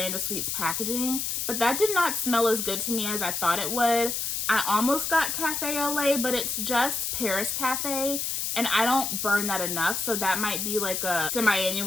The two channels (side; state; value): left; noise; hiss, 1 dB below the sound